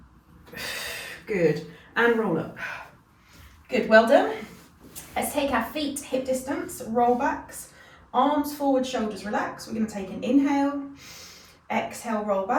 good, and roll up, good, well done. Let's take our feet hip distance, roll backs, arms forward, shoulders relax. We're going to take an inhale, exhale, roll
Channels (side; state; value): both; identical; correlation 1.00